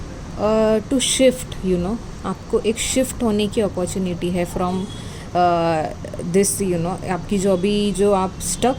टू शिफ्ट, आपको एक शिफ्ट होने की अपॉर्चुनिटी है फ्रॉम दिस, आपकी जो आप स्टक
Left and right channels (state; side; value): identical; both; correlation 1.00